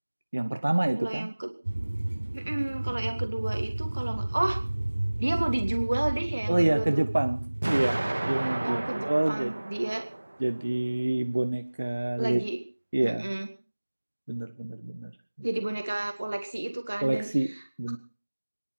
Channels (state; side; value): inverted; both; correlation -1.00